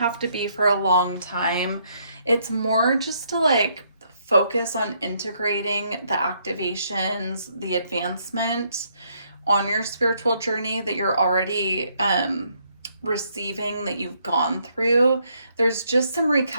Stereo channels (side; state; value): both; inverted; correlation -0.72